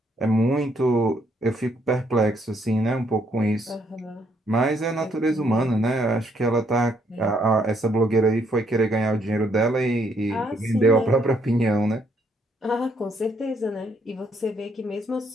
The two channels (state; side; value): normal; both; correlation 0.71